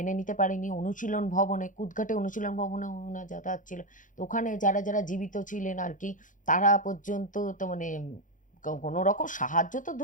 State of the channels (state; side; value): late; right; 0.38 ms